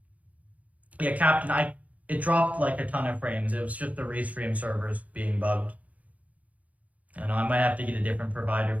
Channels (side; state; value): left; late; 0.071 ms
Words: Yeah, Captain, it dropped like a ton of frames. It was just the Restream servers being bugged. I know I might have to get a different provider